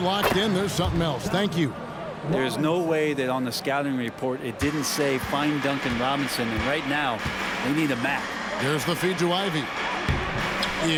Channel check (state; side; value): identical; both; correlation 1.00